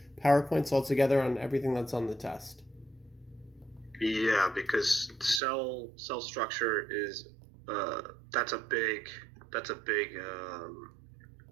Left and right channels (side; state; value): left; drops out; at 5.4 s